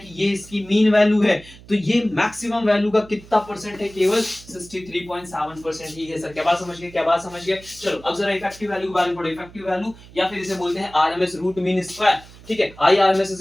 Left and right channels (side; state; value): right; noise; hum, 21 dB below the sound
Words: ये इसकी मीन वैल्यू है तो ये मैक्सिमम वैल्यू का कितना परसेंट है, केवल 63.7% ही है सर। क्या बात समझ गए? क्या बात समझ गए? चलो अब जरा इफेक्टिव वैल्यू के बारे में पढ़ो। इफेक्टिव वैल्यू या फिर इसे बोलते हैं RMS रूट मीन स्क्वायर। ठीक है, I RMS is